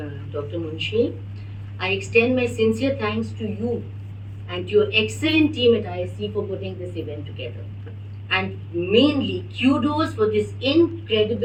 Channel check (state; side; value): identical; both; correlation 1.00